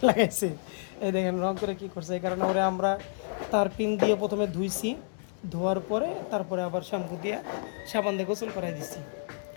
লাগাইছে। এই দেখেন রং করে কী করছে। এই কারণে ওরে আমরা তার পিন দিয়ে প্রথমে ধুইছি, ধোয়ার পরে তারপরে আবার শ্যাম্পু দিয়ে সাবান দিয়ে গোসল করাই দিছি।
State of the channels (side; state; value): right; silent; digital silence